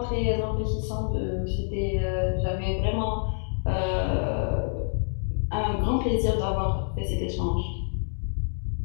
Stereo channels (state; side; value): silent; right; digital silence